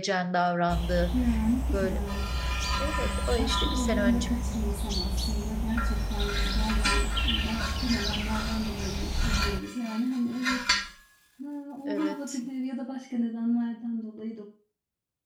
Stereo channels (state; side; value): identical; both; correlation 1.00